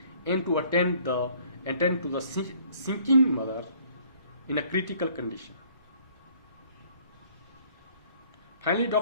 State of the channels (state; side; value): inverted; both; correlation -0.59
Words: and to attend the attend to the sinking mother in a critical condition. Finally,